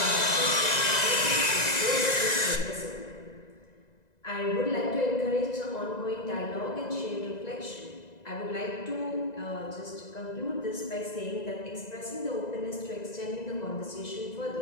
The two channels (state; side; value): late; right; 1.9 ms